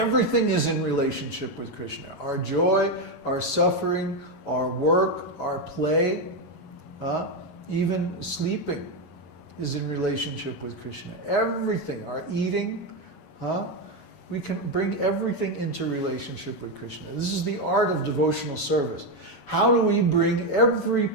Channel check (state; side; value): late; right; 11 ms